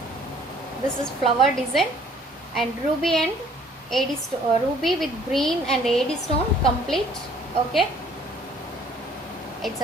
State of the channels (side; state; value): both; normal; correlation 0.58